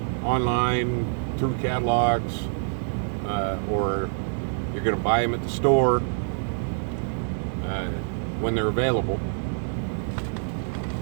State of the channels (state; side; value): silent; left; digital silence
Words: online through catalogs or you're going to buy them at the store when they're available.